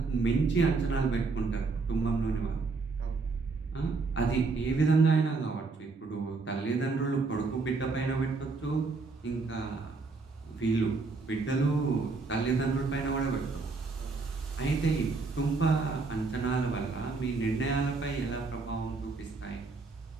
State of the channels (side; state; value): left; quieter; 4.0 dB